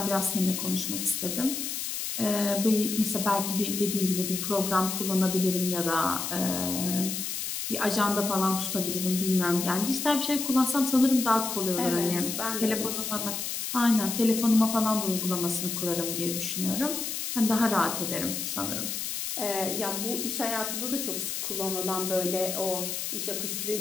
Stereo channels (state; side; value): noise; left; hiss, 3 dB below the sound